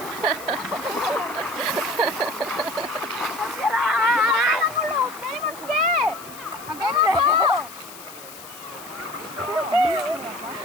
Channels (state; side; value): noise; left; hiss, 16 dB below the sound